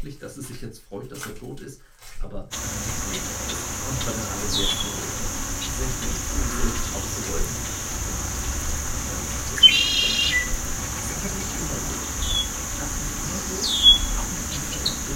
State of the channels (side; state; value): both; identical; correlation 1.00